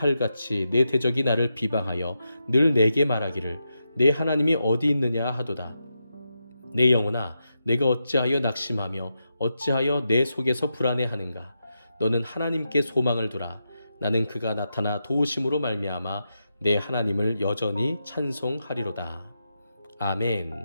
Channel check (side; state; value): both; inverted; correlation -0.87